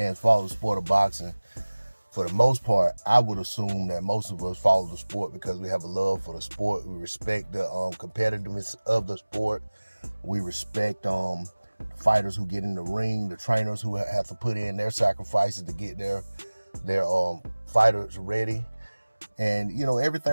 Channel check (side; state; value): both; inverted; correlation -1.00